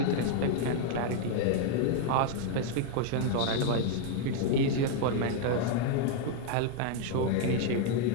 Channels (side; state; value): both; different; correlation 0.00